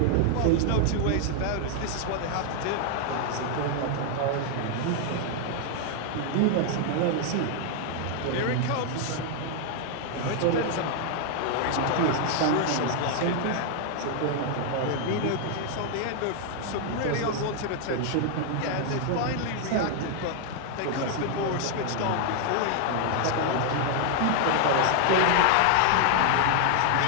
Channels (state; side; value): different; both; correlation 0.00